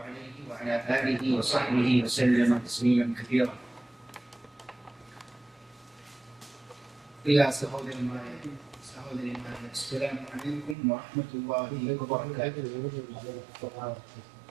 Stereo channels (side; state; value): left; drops out; at 10.8 s